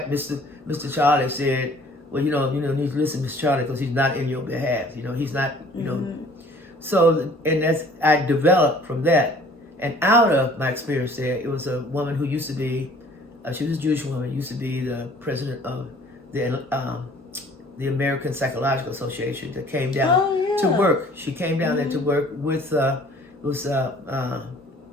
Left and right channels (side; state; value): both; normal; correlation 0.53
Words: Mr. Charlie said, well, you need to listen to Mr. Charlie because he's not in your behalf. He's not, So, and I developed from that. And out of my experience there, it was a woman who used to be, she was a Jewish woman, used to be the president of the American Psychological Association, that came down to work. She came down there to work with Dr.